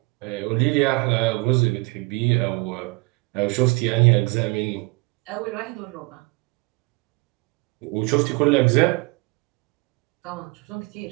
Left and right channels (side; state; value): left; quieter; 26.2 dB